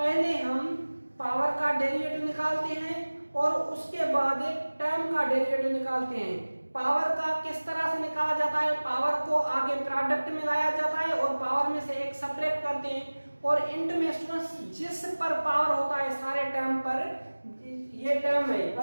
हम पावर का डेरिवेटिव निकालते हैं और उसके बाद टर्म का डेरिवेटिव निकालते हैं। पावर का किस तरह से निकाला जाता है पावर को आगे प्रोडक्ट में लाया जाता है और पावर में से एक सेपरेट करते हैं और इंट में स्टूडेंट्स जिस पर पावर होता है सारे टर्म पर ये टर्म है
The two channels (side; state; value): both; inverted; correlation -1.00